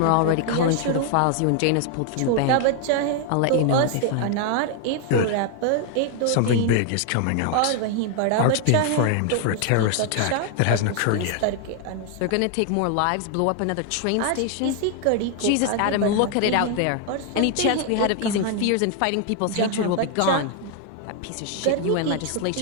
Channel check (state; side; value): different; both; correlation 0.00